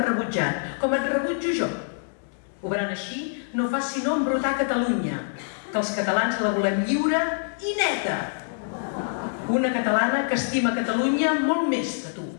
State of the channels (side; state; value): right; silent; digital silence